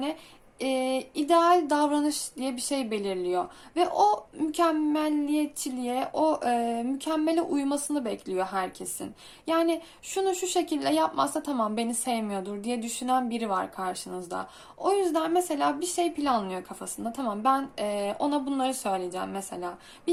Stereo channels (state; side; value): identical; both; correlation 1.00